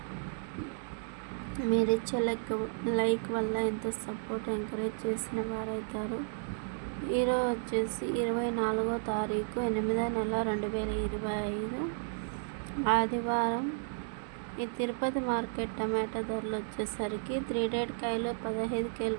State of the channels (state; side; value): silent; left; digital silence